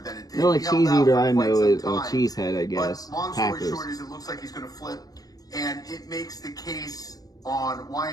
than it did. The only cheese eater I know is Cheesehead, I guess. But long story short is it looks like he's going to flip and it makes the case on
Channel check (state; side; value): late; right; 0.18 ms